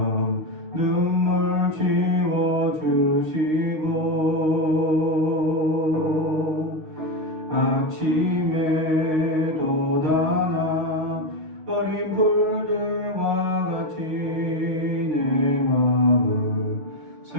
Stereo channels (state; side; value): late; left; 6.4 ms